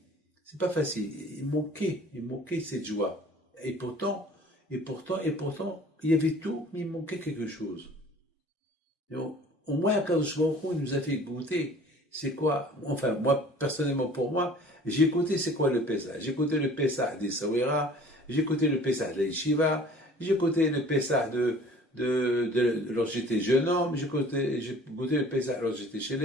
C'est pas facile. Il manquait cette joie. Et pourtant, il y avait tout, mais il manquait quelque chose. Et au moins, quand il nous a fait goûter, c'est quoi, enfin, moi, personnellement, pour moi, j'ai goûté c'est quoi le Pessah. J'ai goûté le Pessah des Sawira, j'ai goûté le Pessah de la Yeshiva, j'ai goûté le Pessah lorsque j'étais jeune homme, j'ai goûté le Pessah lorsque j'étais chez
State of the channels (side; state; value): both; normal; correlation 0.49